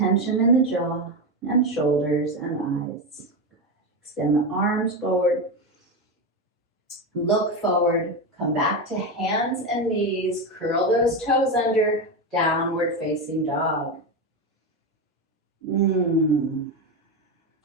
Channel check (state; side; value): normal; both; correlation 0.14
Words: in the jaw and shoulders and eyes. Extend the arms forward. Look forward. Come back to hands and knees. Curl those toes under. Downward facing dog.